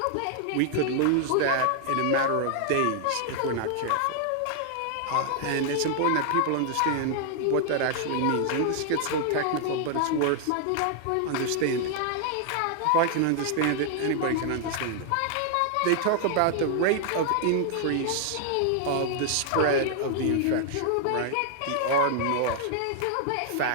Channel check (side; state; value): both; different; correlation 0.00